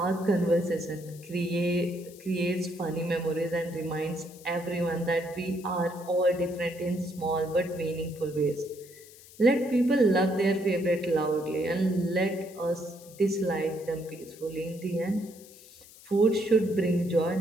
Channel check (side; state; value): left; noise; hiss, 21 dB below the sound